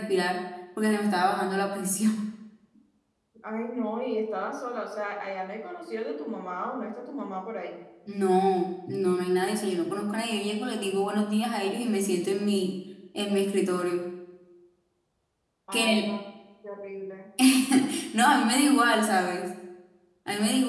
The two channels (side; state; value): both; identical; correlation 1.00